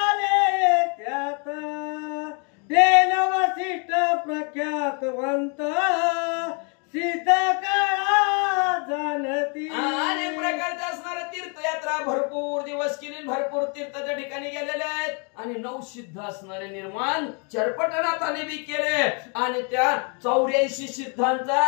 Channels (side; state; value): right; quieter; 36.5 dB